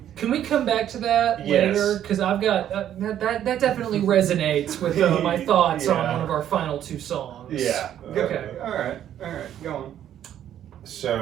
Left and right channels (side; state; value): left; quieter; 10.8 dB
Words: Can we come back to that Yes. later? Because I've got that definitely resonates with my thoughts on Yeah. one of our final two songs. Yeah. Okay. All right. Go on.